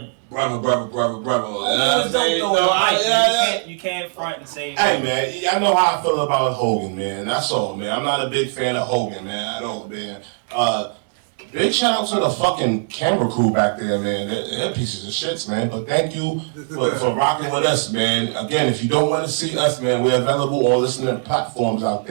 brother. Hogan was dope though. You can't front and say. Hey man, I know how I feel about Hogan, man. That's all, man. I'm not a big fan of Hogan, man, at all, man. Big shout out to the fucking camera crew back there, man. They're pieces of shits, man. But thank you for rocking with us, man. Again, if you don't want to see us, man, we're available on listening platforms out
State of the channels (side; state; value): left; silent; 61 dB below the other